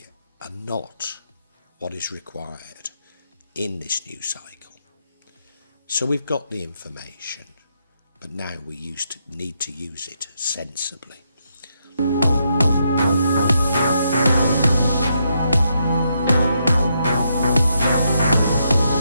are not what is required in this new cycle. So we've got the information, but now we need to use it sensibly.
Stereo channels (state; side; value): inverted; both; correlation -0.79